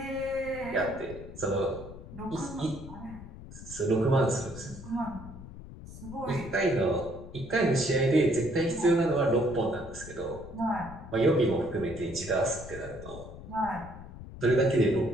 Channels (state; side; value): noise; left; rumble, 14 dB below the sound